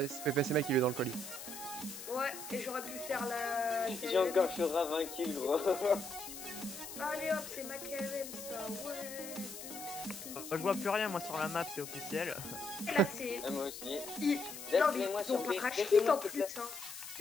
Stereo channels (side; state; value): left; noise; hiss, 10 dB below the sound